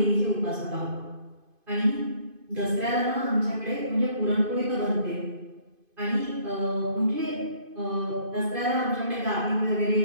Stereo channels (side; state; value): left; late; 2.5 ms